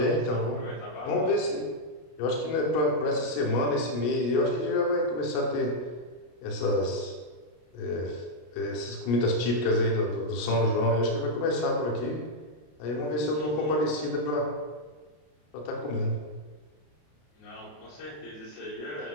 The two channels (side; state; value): right; late; 33 ms